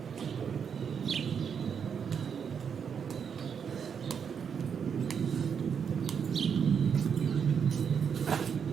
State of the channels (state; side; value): quieter; left; 7.1 dB